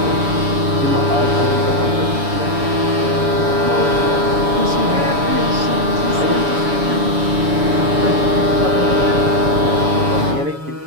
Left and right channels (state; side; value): late; left; 7.0 ms